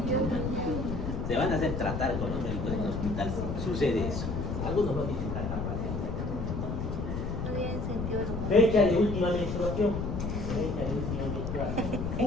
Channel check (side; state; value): left; noise; rumble, 3 dB below the sound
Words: Dios. Se van a hacer tratar con los médicos en el hospital si sucede eso. Algunos no dicen tanta paciencia. No tiene sentido. Fecha de última menstruación. Fecha de última menstruación.